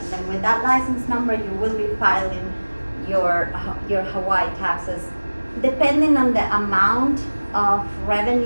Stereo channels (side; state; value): both; inverted; correlation -1.00